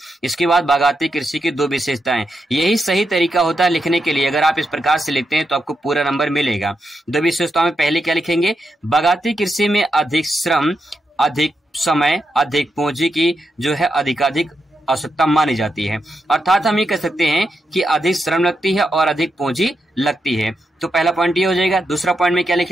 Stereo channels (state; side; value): normal; both; correlation 0.85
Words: इसके बाद बागाती कृषि की 2 विशेषताएं। यही सही तरीका होता है लिखने के लिए। अगर आप इस प्रकार से लिखते हैं तो आपको पूरा नंबर मिलेगा। 2 विशेषताओं में पहले क्या लिखेंगे, बागाती कृषि में अधिक श्रम, अधिक समय, अधिक पूंजी की जो है अधिकाधिक आवश्यकता मानी जाती है। अर्थात हम ये कह सकते हैं कि अधिक श्रम लगती है और अधिक पूंजी लगती है। तो पहला पॉइंट ये हो जाएगा। दूसरा पॉइंट में क्या